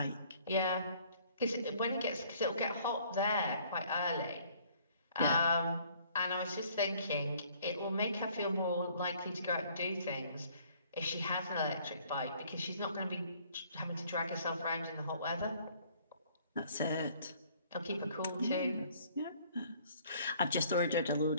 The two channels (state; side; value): inverted; both; correlation -0.59